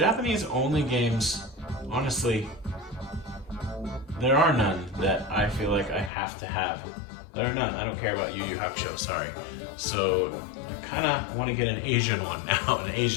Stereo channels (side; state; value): right; drops out; at 6.1 s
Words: only games, honestly, there are none that I feel like I have to have. There are none. I don't care about Yu Yu Hakusho, sorry. So I kind of want to get an Asian one now, an